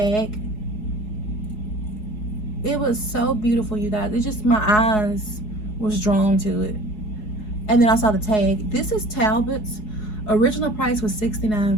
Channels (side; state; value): right; late; 4.7 ms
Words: It was so beautiful, you guys. It just, my eyes was drawn to it. And then I saw the tag. This is Talbot's. Original price was